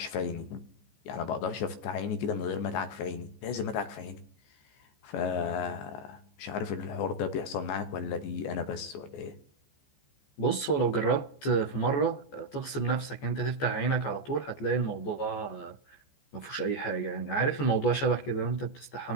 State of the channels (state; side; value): late; right; 14 ms